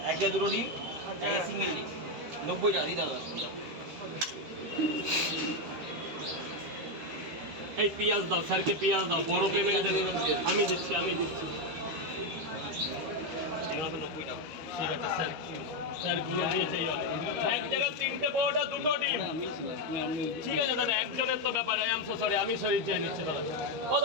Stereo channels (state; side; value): late; left; 13 ms